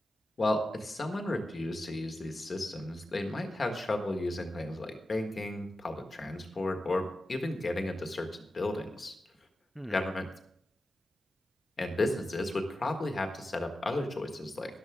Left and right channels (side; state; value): both; normal; correlation 0.92